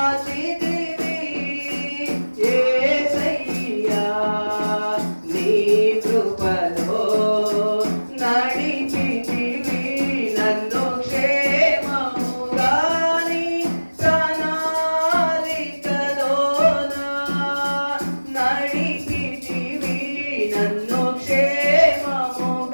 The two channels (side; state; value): both; inverted; correlation -1.00